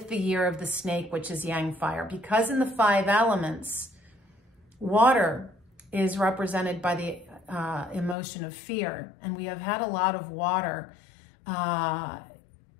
the year of the snake, which is yang fire. Because in the 5 elements, water is represented by the emotion of fear. And we have had a lot of water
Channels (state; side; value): drops out; right; at 8.2 s